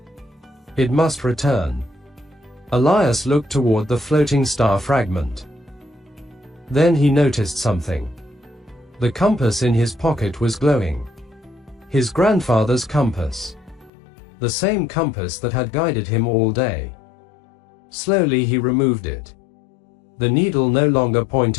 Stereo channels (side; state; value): right; drops out; at 13.9 s